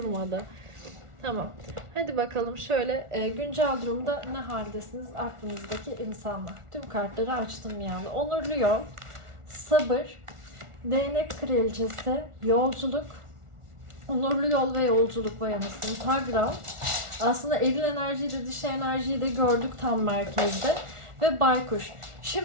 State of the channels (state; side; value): late; left; 1.4 ms